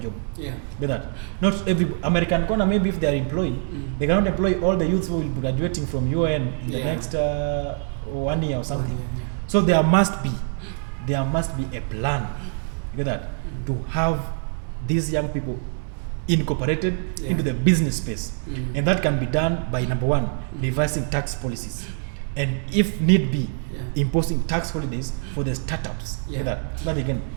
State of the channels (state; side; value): silent; left; 62 dB below the other